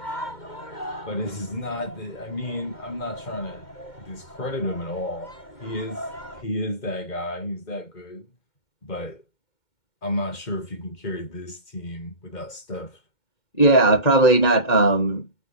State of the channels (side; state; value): right; late; 2.1 ms